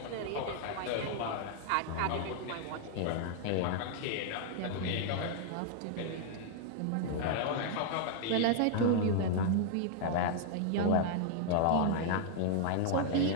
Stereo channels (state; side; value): different; both; correlation 0.00